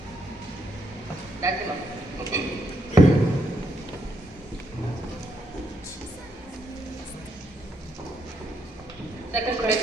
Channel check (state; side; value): normal; both; correlation 0.76